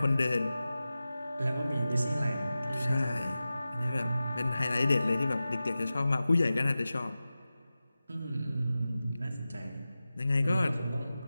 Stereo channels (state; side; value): inverted; both; correlation -0.95